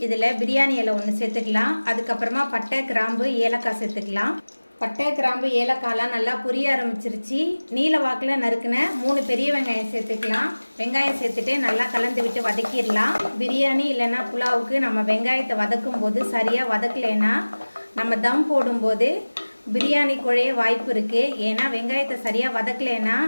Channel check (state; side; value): inverted; both; correlation -1.00